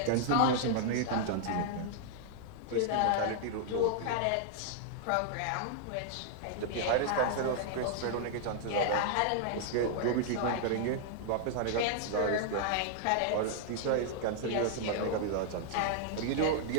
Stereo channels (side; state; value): both; different; correlation -0.01